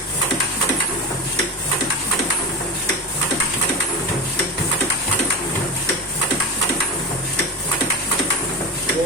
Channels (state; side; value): normal; both; correlation 0.23